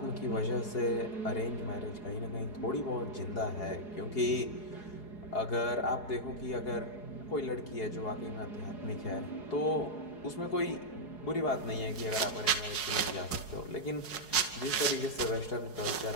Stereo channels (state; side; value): late; right; 4.8 ms